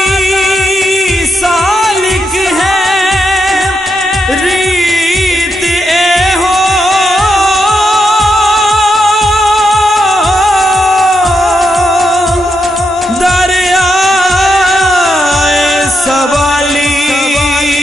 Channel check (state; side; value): normal; both; correlation 0.82